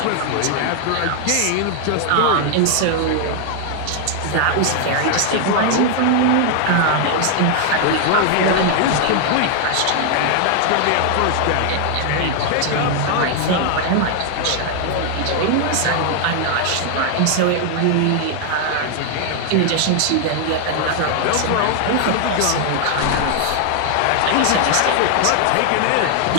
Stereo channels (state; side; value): different; both; correlation 0.00